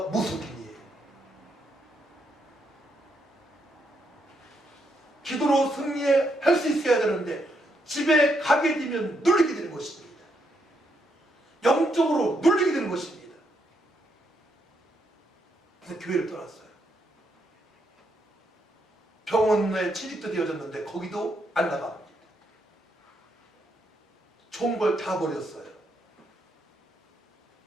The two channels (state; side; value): normal; both; correlation 0.78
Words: 무속인이에요. 기도로 승리할 수 있어야 되는데 집에 가게 되면 눌리게 되는 것입니다. 영적으로 눌리게 되는 것입니다. 병원에 취직도 되어졌는데 거기도 안 나갑니다. 좋은 걸 다 버렸어요.